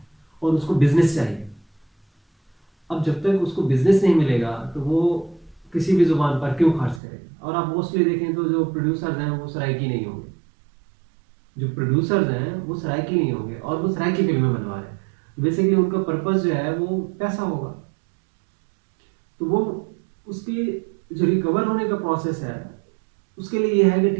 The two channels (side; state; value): left; drops out; at 7.0 s